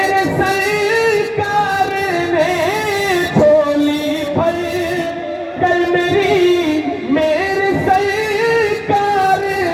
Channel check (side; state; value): both; identical; correlation 1.00